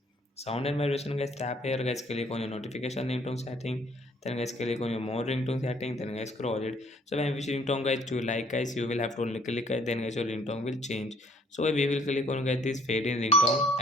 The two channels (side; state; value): both; normal; correlation 0.61